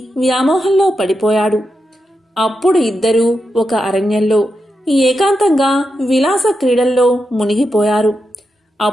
వ్యామోహంలో పడిపోయాడు. అప్పుడు ఇద్దరూ ఒక అరణ్యంలో ఏకాంతంగా విలాస క్రీడల్లో మునిగిపోయారు.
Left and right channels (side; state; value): both; normal; correlation 0.87